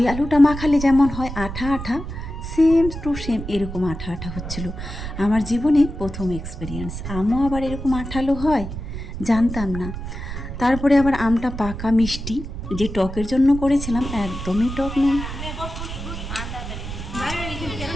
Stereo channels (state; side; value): noise; right; rumble, 8 dB below the sound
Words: আলুটা মাখালে যেমন হয় আঠা আঠা, সেম টু সেম এরকম আঠা আঠা হচ্ছিল। আমার জীবনে প্রথম এক্সপিরিয়েন্স, আমও আবার এরকম আঠালো হয়, জানতাম না। তারপরে আবার আমটা পাকা মিষ্টি, যে টকের জন্য করেছিলাম একদমই টক নেই।